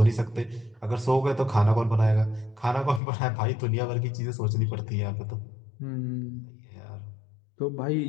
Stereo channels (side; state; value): right; drops out; at 3.0 s